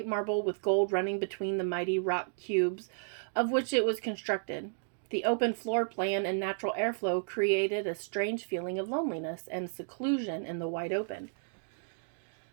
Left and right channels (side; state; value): left; silent; digital silence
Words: marble with gold running between the mighty rock cubes of which it was constructed. The open floor plan and natural airflow created a strange feeling of loneliness and seclusion in the wide open.